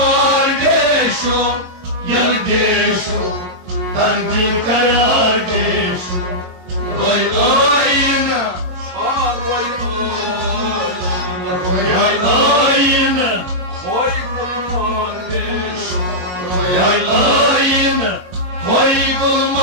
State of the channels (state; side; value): late; left; 22 ms